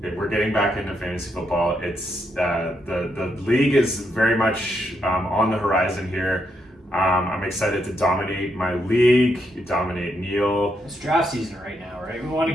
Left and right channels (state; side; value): normal; both; correlation 0.79